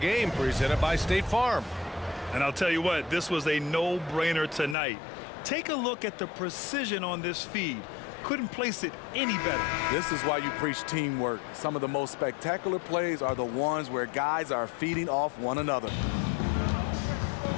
presented by State Farm. And I'll tell you what, this was a no-brainer tonight. Take a look at the precision on this feed. Couldn't place it any better. This is why you preach teamwork. Some of the most spectacular plays are the ones where guys are feeding off one another.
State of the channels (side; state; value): right; drops out; at 4.8 s